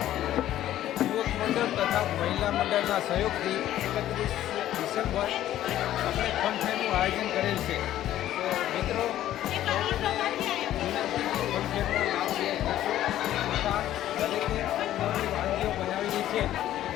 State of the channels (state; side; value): quieter; right; 12.9 dB